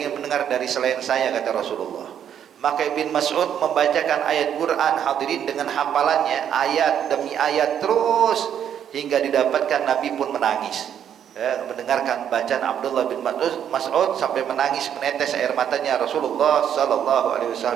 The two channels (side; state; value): left; quieter; 9.2 dB